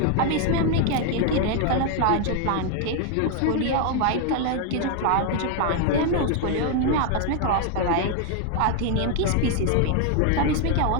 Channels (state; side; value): different; both; correlation 0.00